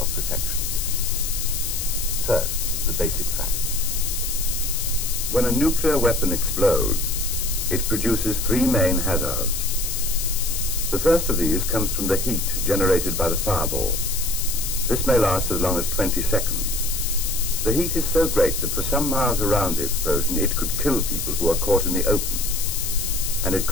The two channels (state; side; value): noise; left; hiss, 3 dB below the sound